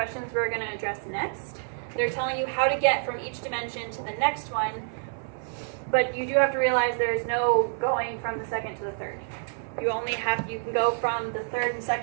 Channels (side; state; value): left; silent; 59 dB below the other